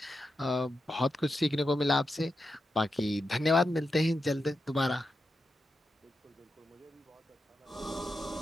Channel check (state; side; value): normal; both; correlation 0.88